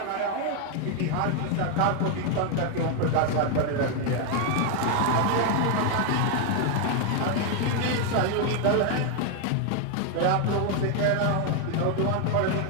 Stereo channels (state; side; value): different; both; correlation 0.01